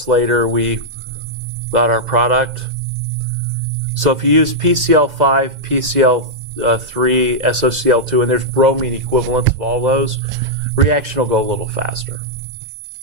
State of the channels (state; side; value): late; left; 2.0 ms